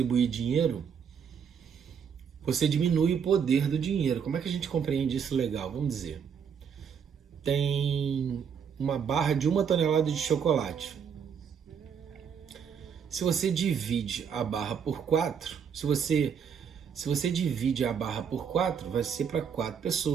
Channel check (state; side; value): quieter; left; 7.1 dB